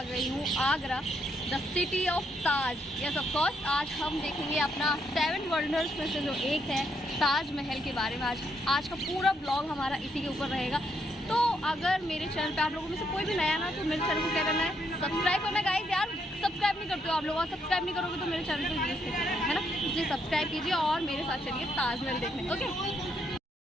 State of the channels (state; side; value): normal; both; correlation 0.75